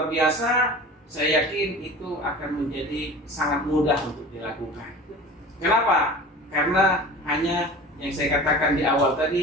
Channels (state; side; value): normal; both; correlation 0.38